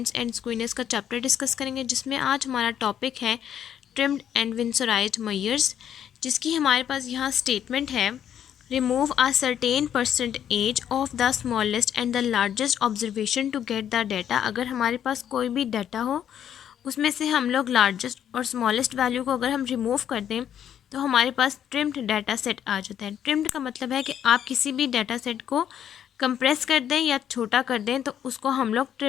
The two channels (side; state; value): right; quieter; 9.6 dB